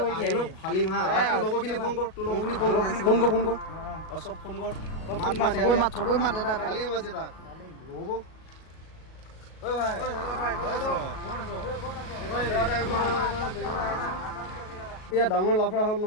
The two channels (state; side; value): late; right; 37 ms